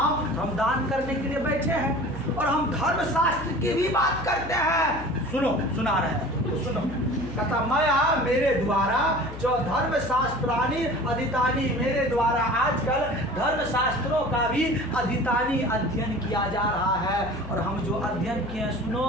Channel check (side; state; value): left; noise; hum, 12 dB below the sound